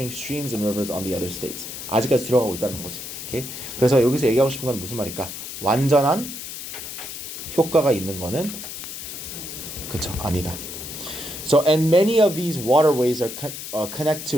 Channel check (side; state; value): left; noise; hiss, 9 dB below the sound